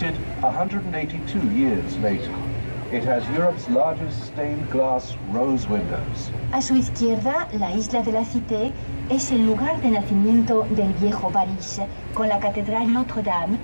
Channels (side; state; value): both; inverted; correlation -1.00